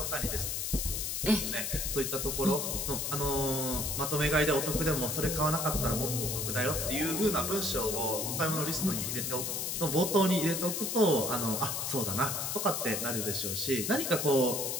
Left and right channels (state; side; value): noise; left; hiss, 2 dB below the sound